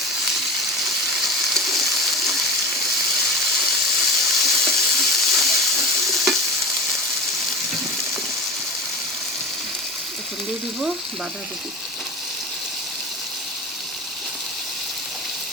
এখন দিয়ে দিব বাঁধাকপি।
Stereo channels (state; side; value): normal; both; correlation 0.32